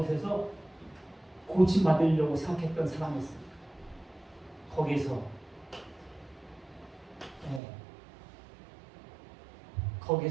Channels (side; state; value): left; drops out; at 7.6 s